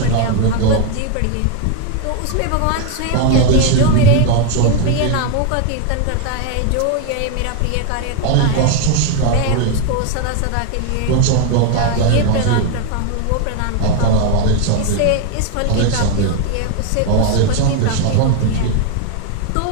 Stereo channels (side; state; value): both; different; correlation 0.01